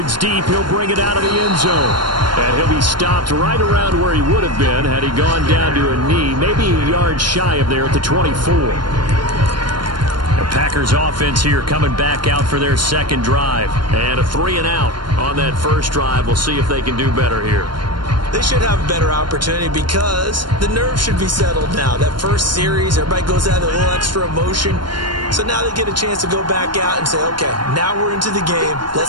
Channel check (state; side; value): late; left; 0.72 ms